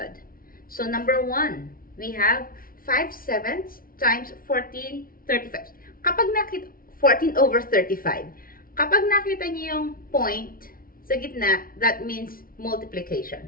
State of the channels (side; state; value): right; late; 0.42 ms